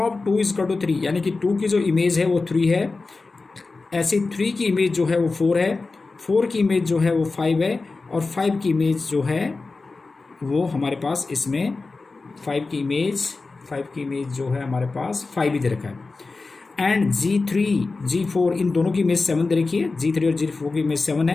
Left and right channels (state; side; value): quieter; right; 3.8 dB